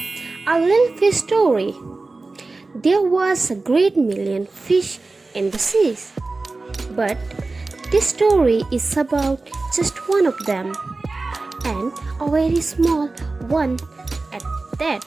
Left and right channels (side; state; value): left; quieter; 3.5 dB